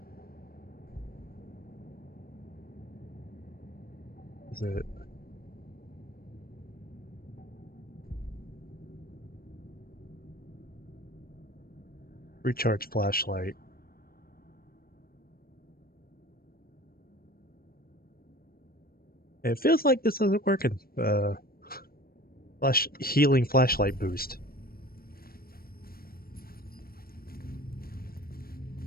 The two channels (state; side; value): late; right; 0.43 ms